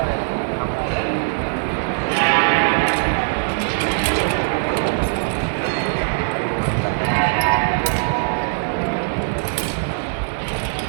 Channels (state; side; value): silent; left; 65 dB below the other